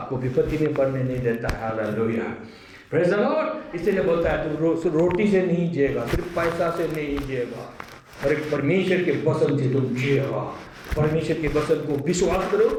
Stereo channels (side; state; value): both; identical; correlation 1.00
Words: विपत्ति में पड़ने नहीं देता है, हालेलुया, प्रेज द लॉर्ड। इसलिए बोलता है तू रोटी से नहीं जिएगा, सिर्फ पैसा से नहीं जिएगा, और एक परमेश्वर के वचन से तुम जियो, परमेश्वर के वचन को विश्वास करो,